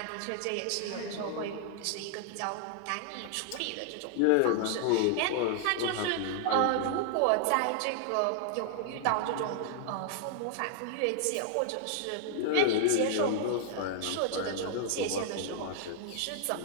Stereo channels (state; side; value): different; both; correlation 0.00